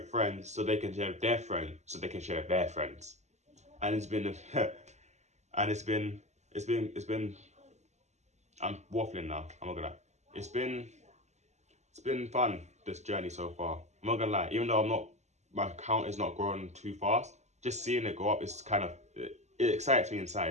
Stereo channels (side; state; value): left; late; 0.33 ms